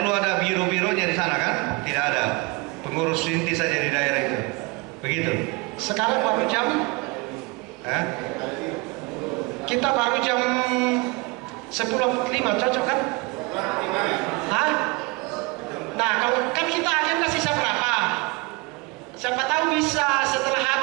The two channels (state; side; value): quieter; left; 26.7 dB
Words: ada biro-bironya di sana kan? Tidak ada. Pengurus inti saja di daerah itu. Begitu. Sekarang baru jam kita baru jam 10.05, cocok kan? Hah? Nah, kalau kan kita agenda sisa berapa? Siapa tahu bisa setelah